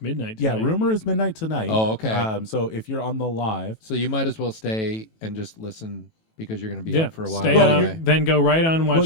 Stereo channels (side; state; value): right; late; 18 ms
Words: midnight tonight. Yeah, rumor is midnight tonight. Oh, okay. So if you're on the live, So you might as well stay and just listen because you're going to be Yeah, up for a while. stay Well, up, anyway. then go right on and